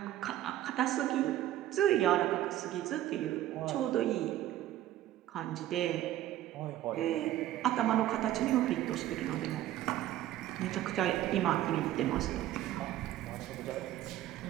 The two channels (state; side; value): quieter; left; 13.4 dB